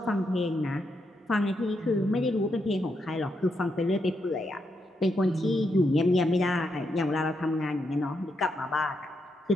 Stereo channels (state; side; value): normal; both; correlation 0.81